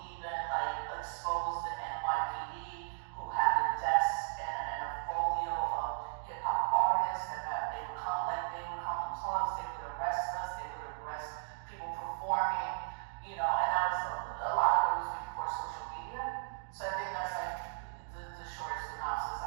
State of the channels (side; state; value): left; silent; digital silence